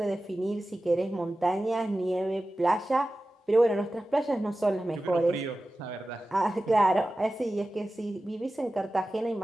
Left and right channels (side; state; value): both; normal; correlation 0.95